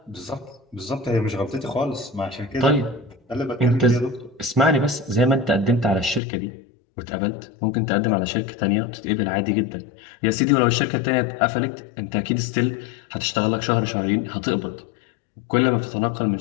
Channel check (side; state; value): right; drops out; at 6.2 s